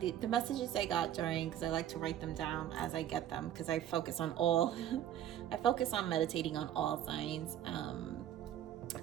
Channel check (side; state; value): left; quieter; 11.1 dB